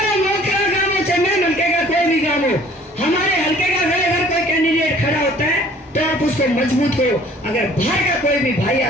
मोखरा गांव हो चाहे मैं हल्के का कोई भी गांव हो, हमारे हल्के का अगर कोई कैंडिडेट खड़ा होता है तो आप उसको मजबूत करो। अगर बाहर का कोई भी भाई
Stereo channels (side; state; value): both; normal; correlation 0.53